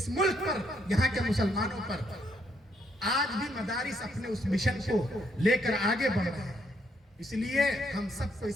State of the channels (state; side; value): normal; both; correlation 0.73